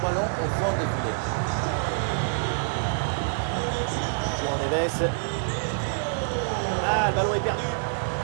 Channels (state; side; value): silent; left; digital silence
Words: au fond des filets. Juan Neves. Ah, le ballon est perdu.